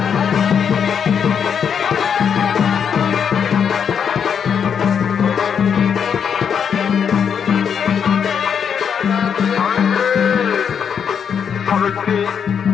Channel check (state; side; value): quieter; right; 7.4 dB